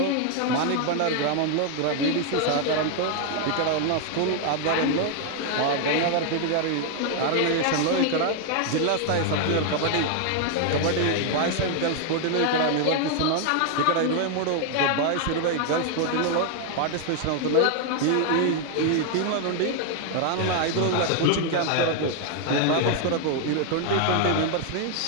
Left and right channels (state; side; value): different; both; correlation 0.00